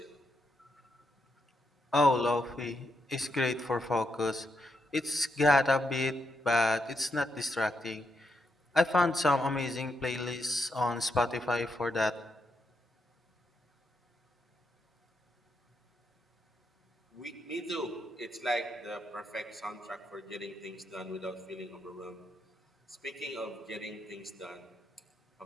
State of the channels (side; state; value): both; normal; correlation 0.81